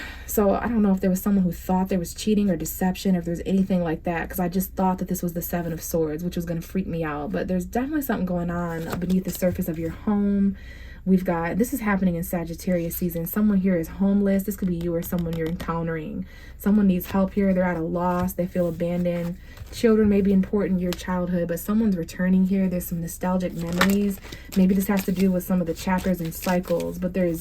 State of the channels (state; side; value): identical; both; correlation 1.00